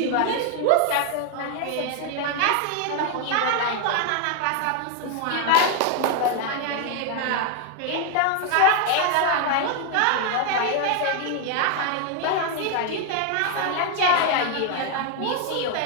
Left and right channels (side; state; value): both; different; correlation 0.00